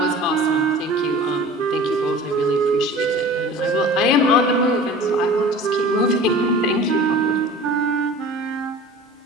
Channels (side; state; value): both; normal; correlation 0.41